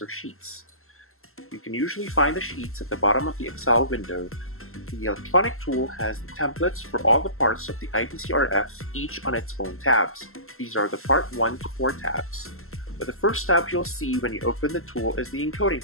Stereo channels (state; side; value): late; right; 0.62 ms